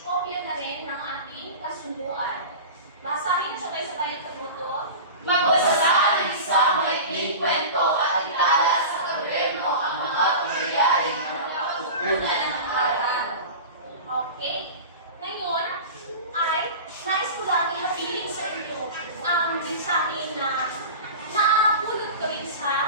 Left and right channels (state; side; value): inverted; both; correlation -0.32